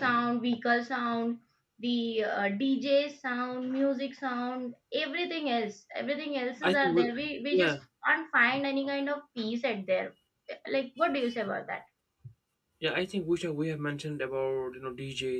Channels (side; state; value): both; identical; correlation 1.00